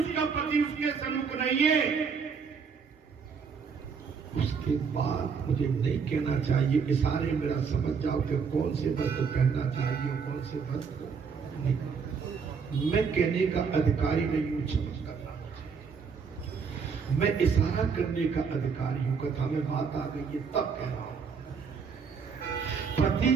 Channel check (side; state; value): left; quieter; 5.9 dB